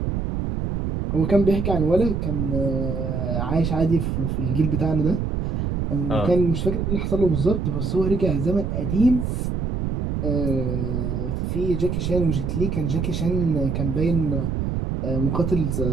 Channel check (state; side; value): noise; right; rumble, 1 dB below the sound